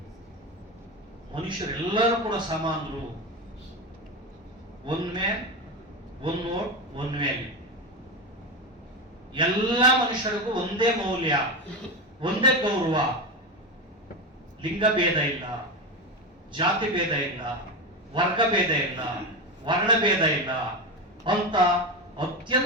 ಮನುಷ್ಯರೆಲ್ಲರೂ ಕೂಡ ಸಮಾನರು. One man one vote one value. ಎಲ್ಲ ಮನುಷ್ಯರಿಗೂ ಒಂದೇ ಮೌಲ್ಯ, ಒಂದೇ ಗೌರವ. ಲಿಂಗ ಭೇದ ಇಲ್ಲ, ಜಾತಿ ಭೇದ ಇಲ್ಲ, ವರ್ಗ ಭೇದ ಇಲ್ಲ, ವರ್ಣ ಭೇದ ಇಲ್ಲ ಅಂತ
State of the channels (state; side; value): normal; both; correlation 0.18